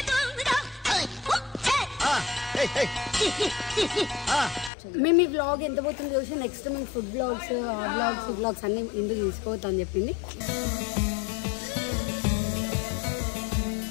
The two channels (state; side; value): drops out; right; at 4.7 s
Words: మేము ఈ వ్లాగ్ ఎంత పోతుంది చూసి నెక్స్ట్ మేము ఫుడ్ బ్లాగ్స్ వ్లాగ్స్ అన్ని ఇందుకు తీసుకోవద్దు అని చెప్పింది.